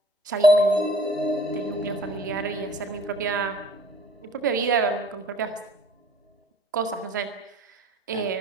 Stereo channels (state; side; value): normal; both; correlation 0.52